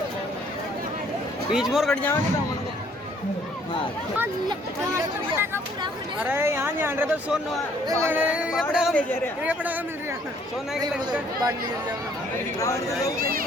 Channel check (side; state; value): both; normal; correlation 0.62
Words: बीच मोर कट जाओगे तो मन को हां अरे यहां जान रहे तो सोन ये पड़ा ले जा रहे ये पड़ा मिल रहा सोना की लंका बांध ले जाओ